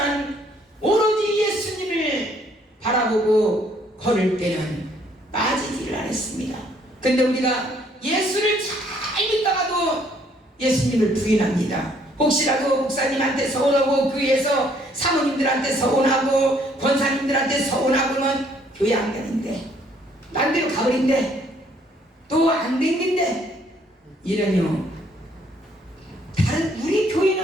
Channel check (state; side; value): normal; both; correlation 0.65